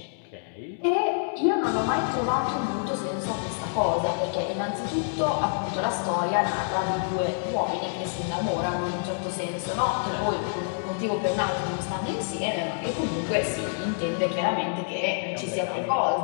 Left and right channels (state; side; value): silent; right; 60 dB below the other